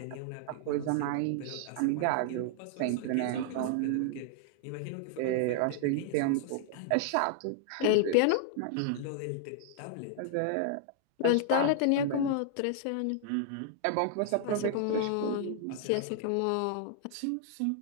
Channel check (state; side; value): different; both; correlation -0.01